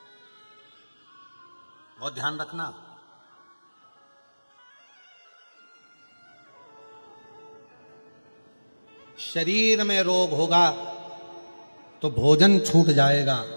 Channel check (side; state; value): both; inverted; correlation -1.00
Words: बहुत ध्यान रखना। शरीर में रोग होगा तो भोजन छूट जाएगा,